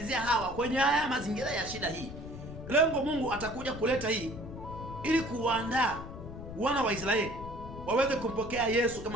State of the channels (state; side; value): noise; left; rumble, 11 dB below the sound